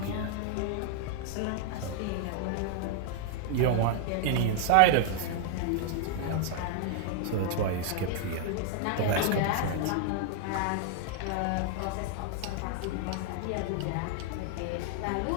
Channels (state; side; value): different; both; correlation 0.00